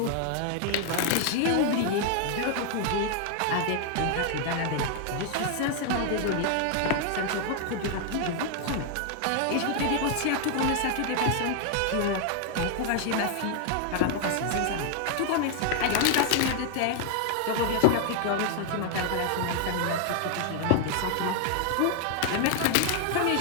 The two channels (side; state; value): both; different; correlation 0.00